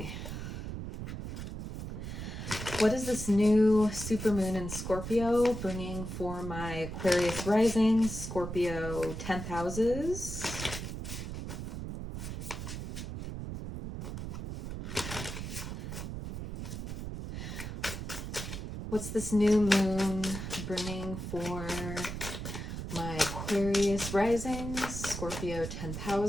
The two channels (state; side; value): noise; right; rumble, 6 dB below the sound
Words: What is this new supermoon in Scorpio bringing for my Aquarius Rising, Scorpio 10th houses? What's this new moon bringing for my Aquarius Risings, Scorpio 10th